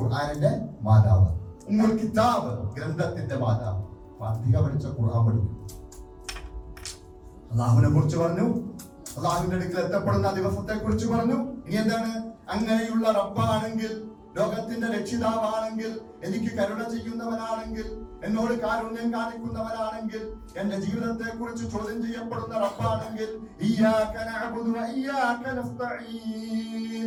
മാതാവ്. ഉമ്മുൽ കിതാബ്, ഗ്രന്ഥത്തിന്റെ മാതാവ്. ഫാത്തിഹ പഠിച്ച ഖുർആൻ പഠിക്കും. അള്ളാഹുവിനെ കുറിച്ച് പറഞ്ഞു, അള്ളാഹുവിന്റെ അടുക്കൽ എത്തപ്പെടുന്ന ദിവസത്തെ കുറിച്ച് പറഞ്ഞു. ഇനി എന്താണ്? അങ്ങനെയുള്ള റബ്ബാണെങ്കിൽ, ലോകത്തിന്റെ രക്ഷിതാവാണെങ്കിൽ, എനിക്ക് കരുണ ചെയ്യുന്നവനാണെങ്കിൽ, എന്നോട് കാരുണ്യം കാണിക്കുന്നവനാണെങ്കിൽ, എന്റെ ജീവിതത്തെ കുറിച്ച് ചോദ്യം ചെയ്യപ്പെടുന്ന റബ്ബാണെങ്കിൽ, ഇയ്യാക നഅ്ബുദു വ ഇയ്യാക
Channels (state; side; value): identical; both; correlation 1.00